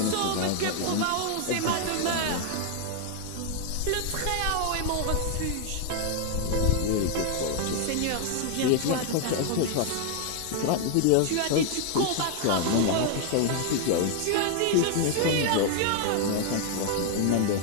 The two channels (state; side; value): different; both; correlation 0.00